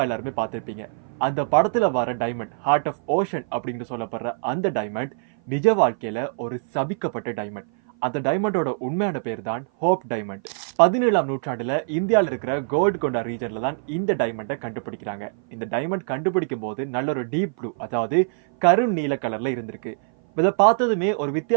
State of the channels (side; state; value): left; silent; 56 dB below the other